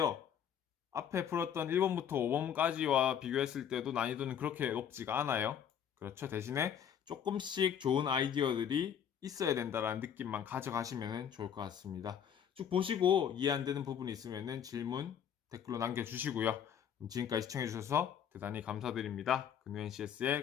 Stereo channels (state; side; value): quieter; right; 8.7 dB